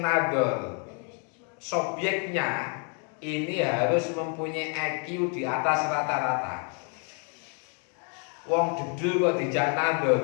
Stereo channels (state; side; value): quieter; right; 38.0 dB